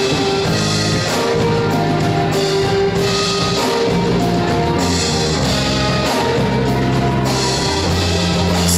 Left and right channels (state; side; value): identical; both; correlation 1.00